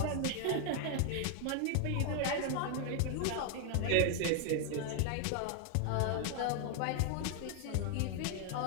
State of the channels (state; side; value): different; both; correlation 0.00